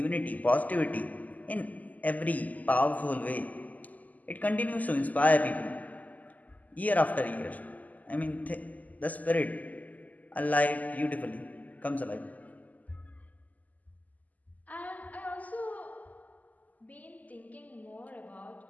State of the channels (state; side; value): late; right; 0.078 ms